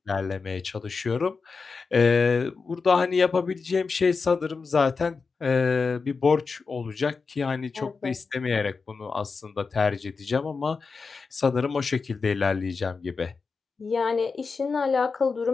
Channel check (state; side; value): quieter; right; 4.7 dB